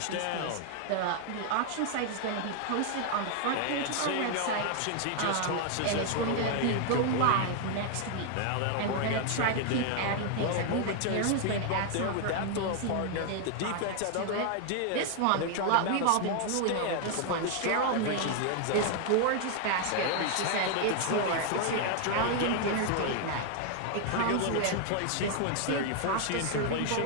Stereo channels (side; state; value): both; different; correlation 0.00